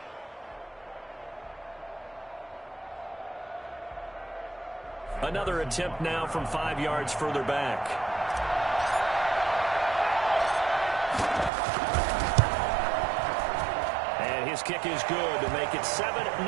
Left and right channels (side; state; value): left; drops out; at 11.5 s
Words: Another attempt now from 5 yards further back. And his kick is good to make it 7-0